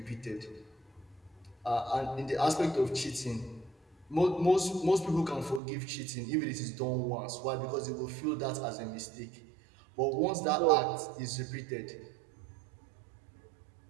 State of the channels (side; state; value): left; drops out; at 5.6 s